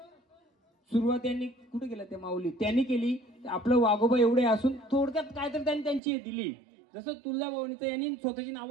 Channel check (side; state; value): left; drops out; at 6.0 s